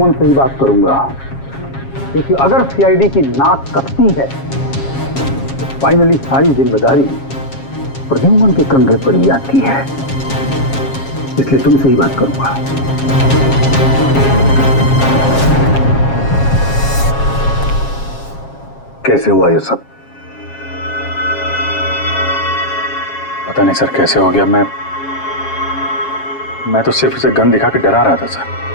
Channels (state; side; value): late; right; 7.3 ms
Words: से ही बात करूंगा, क्योंकि अगर सीआईडी की नाक कटती है तो फाइनली सारी जिम्मेदारी प्रद्युमन के कंधे पर ही आती है। इसलिए तुमसे ही बात करूंगा। कैसे हुआ ये सब? पता नहीं सर कैसे हो गया। मैं तो सिर्फ उसे गन दिखा के डरा रहा था सर।